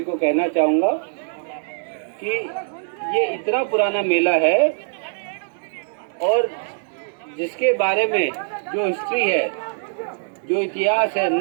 को कहना चाहूँगा कि ये इतना पुराना मेला है और जिसके बारे में जो हिस्ट्री है, जो इतिहास है,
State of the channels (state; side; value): silent; left; digital silence